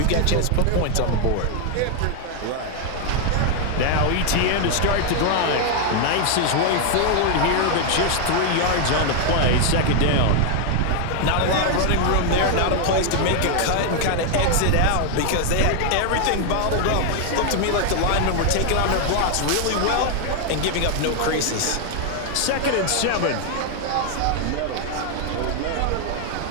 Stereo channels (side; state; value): both; different; correlation 0.00